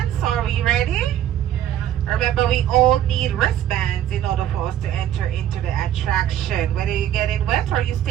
are we ready? Remember, we all need wristbands in order for us to enter into the attraction. Whether you're getting wet or you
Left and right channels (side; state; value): left; quieter; 11.4 dB